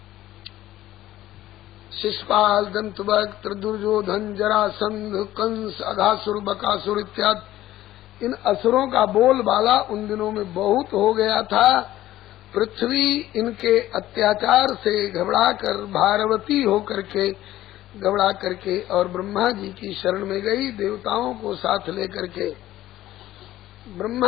शिशुपाल, दंतवक्त्र, दुर्योधन, जरासंध, कंस, अघासुर, बकासुर इत्यादि इन असुरों का बोलबाला उन दिनों में बहुत हो गया था। पृथ्वी इनके अत्याचार से घबराकर भारवती होकर के घबरा करके और ब्रह्मा जी की शरण में गई, देवताओं को साथ लेकर के।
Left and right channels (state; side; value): quieter; right; 14.4 dB